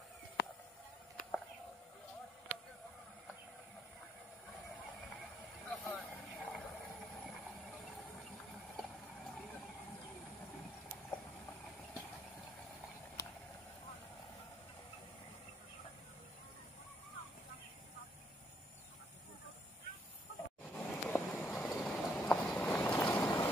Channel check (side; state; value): both; normal; correlation 0.71